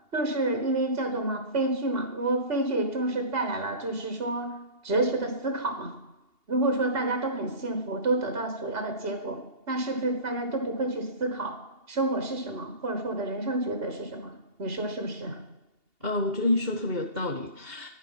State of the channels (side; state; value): left; late; 2.8 ms